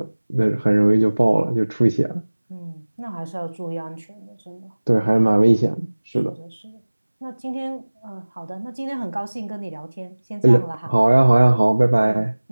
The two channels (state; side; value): inverted; both; correlation -1.00